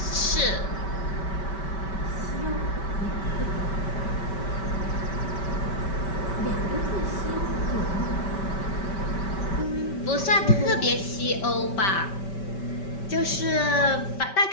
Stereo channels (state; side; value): late; right; 5.2 ms